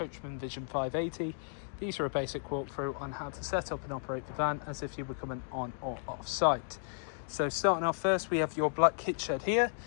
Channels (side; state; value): right; silent; digital silence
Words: Vision 580. These are a basic walkthrough on how to set up and operate the van as if you were coming on or off site. So starting off first, we have your black kit shed here